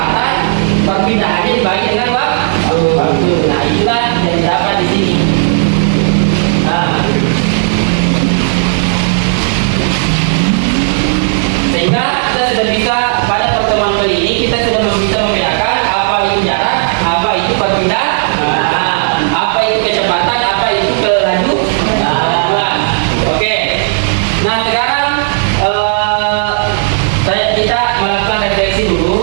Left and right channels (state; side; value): silent; left; digital silence